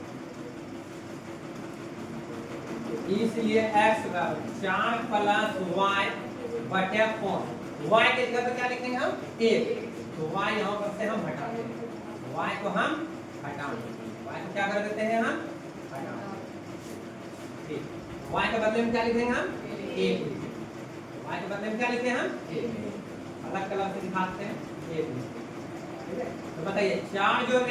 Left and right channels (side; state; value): both; identical; correlation 1.00